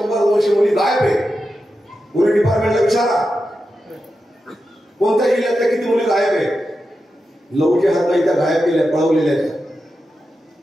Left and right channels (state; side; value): normal; both; correlation 0.90